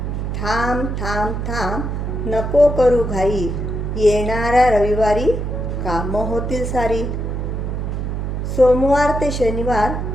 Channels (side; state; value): right; noise; hum, 3 dB below the sound